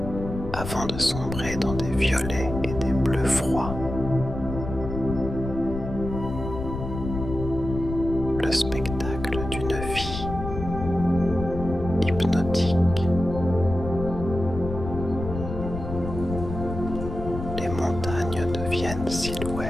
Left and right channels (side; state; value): left; noise; rumble, 7 dB below the sound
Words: avant de sombrer dans des violets et des bleus froids. Le spectacle d'une vie hypnotique. Les montagnes deviennent